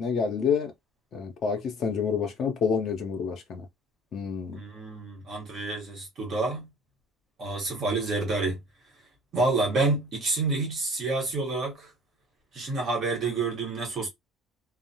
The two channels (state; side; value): normal; both; correlation 0.46